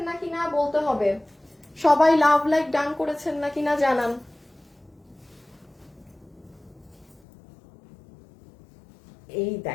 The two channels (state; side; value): drops out; right; at 7.2 s